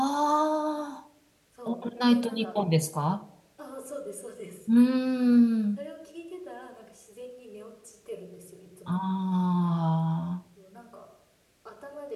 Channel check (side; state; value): both; identical; correlation 1.00